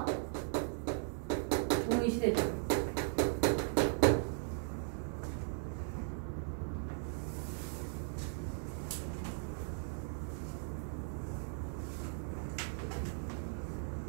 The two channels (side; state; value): left; silent; 53 dB below the other